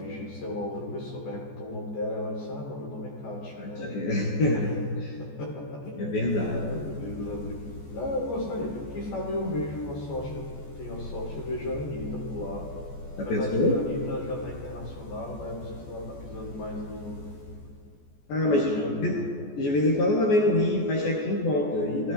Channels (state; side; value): late; right; 14 ms